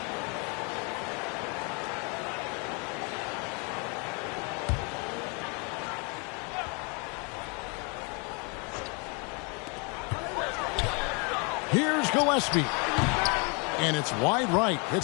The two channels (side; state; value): right; quieter; 33.2 dB